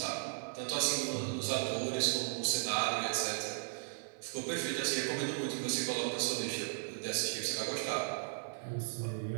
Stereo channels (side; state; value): left; silent; 54 dB below the other